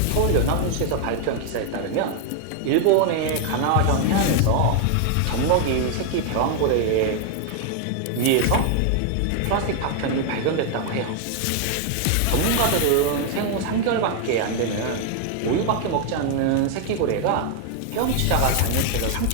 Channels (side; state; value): both; different; correlation 0.00